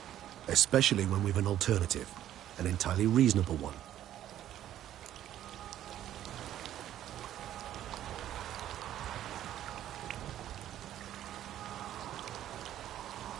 Especially when we've an alternative. An entirely reasonable one.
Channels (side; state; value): left; quieter; 11.9 dB